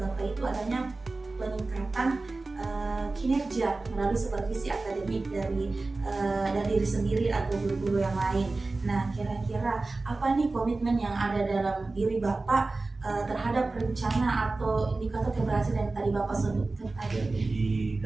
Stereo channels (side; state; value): left; quieter; 3.4 dB